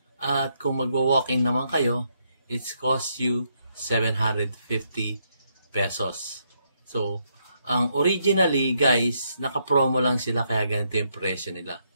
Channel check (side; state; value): both; inverted; correlation -0.76